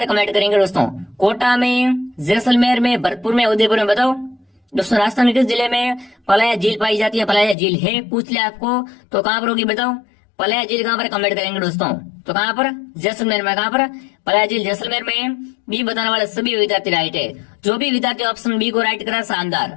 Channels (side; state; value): right; drops out; at 7.6 s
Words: कमेंट करेंगे दोस्तों। कोटा में, जैसलमेर में, भरतपुर में, उदयपुर में? बताओ दोस्तों राजस्थान किस जिले में पलाया झील पाई जाती है? पलाया झील है पूछ लिया आपको, तो कहाँ पर होगी बताओ? पलाया झील कहाँ पर? कमेंट करेंगे दोस्तों। तो कहाँ पर? जैसलमेर में। कहाँ पर? पलाया झील जैसलमेर में। बी बताने वाले सभी विद्यार्थी राइट है। जो भी विद्यार्थी ऑप्शन बी को राइट करा